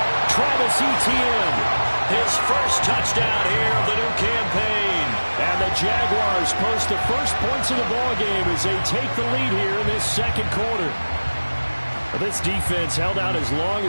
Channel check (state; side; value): inverted; both; correlation -1.00